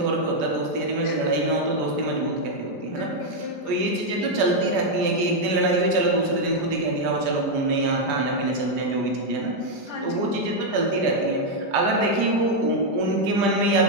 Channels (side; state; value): left; late; 5.0 ms